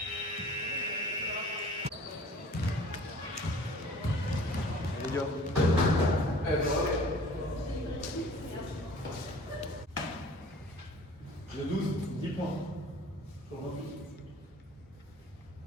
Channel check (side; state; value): both; normal; correlation 0.49